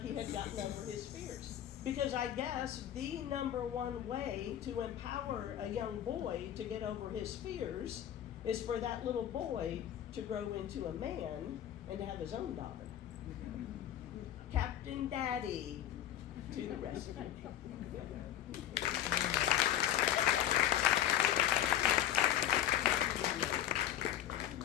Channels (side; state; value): right; quieter; 11.3 dB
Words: had gotten over his fears. Because I guess the number one way to empower a young boy to get over his fears is for that little boy to grow into a man and to have his own daughter. Captain Daddy to the rescue.